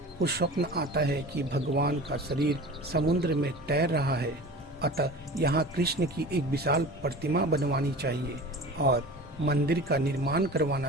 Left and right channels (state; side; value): normal; both; correlation 0.37